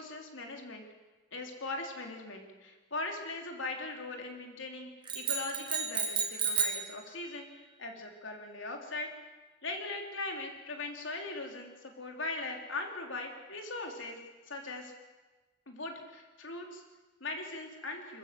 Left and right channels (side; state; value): both; normal; correlation -0.19